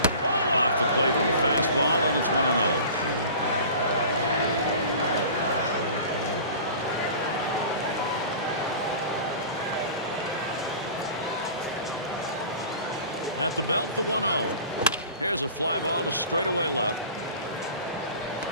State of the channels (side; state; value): both; inverted; correlation -0.40